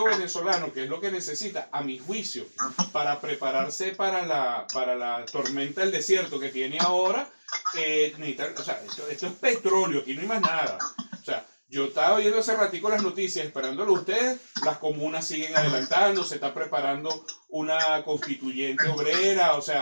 venezolano, que es lo que necesita, a mi juicio, para prepararse para la tormenta del desierto que tiene ahora, o sea, esto es petróleo, aquí no hay más nada. O sea, yo estaba viendo hace ratico las noticias, esperándolo a ustedes, las comunas siguen adelantando, se está preparando una constituyente obrera, o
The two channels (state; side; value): inverted; both; correlation -1.00